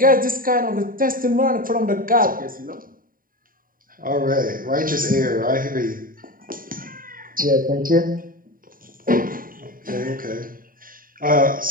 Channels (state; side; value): late; left; 0.41 ms